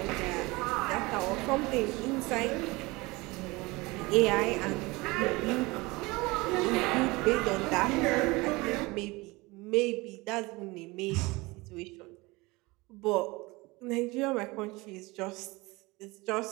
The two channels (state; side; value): quieter; left; 23.3 dB